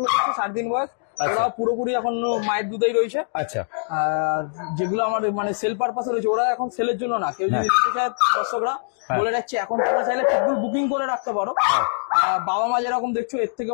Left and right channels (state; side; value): silent; right; digital silence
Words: হচ্ছে 7 দিন বয়স, ওরা পুরোপুরি এখন মায়ের দুধেই রয়েছে। আচ্ছা। আর যেগুলো আমার মানে সেল পারপাসে রয়েছে, ওরা এখন সেলের জন্য না। কেউ যদি নিতে চায়, দর্শকরা বলে রাখছি, এখন তোমরা চাইলে পিটবুল বুকিং করে রাখতে পারো। বাবা মা যেরকম দেখছো, এর থেকে